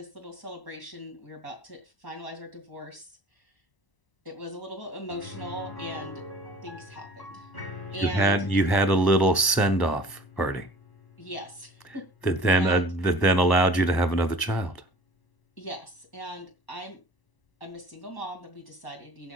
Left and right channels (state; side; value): late; right; 1.0 ms